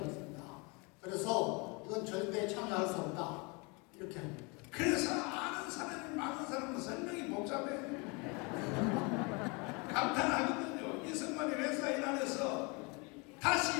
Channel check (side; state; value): right; quieter; 29.8 dB